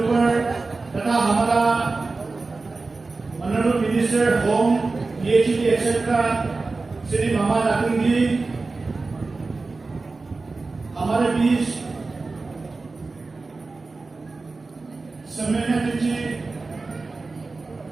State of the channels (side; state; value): left; quieter; 3.8 dB